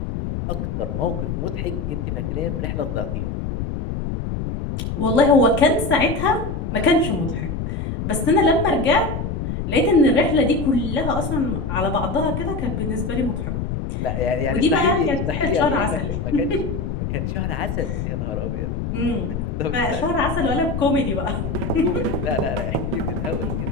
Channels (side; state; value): left; noise; rumble, 3 dB below the sound